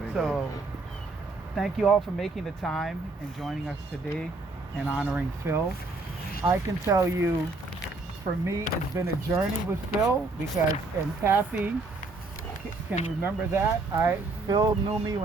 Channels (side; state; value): left; quieter; 3.3 dB